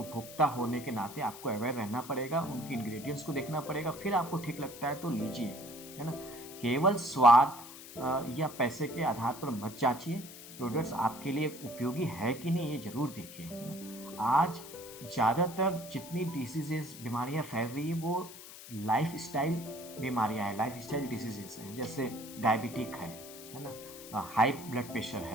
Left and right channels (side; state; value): left; noise; hiss, 15 dB below the sound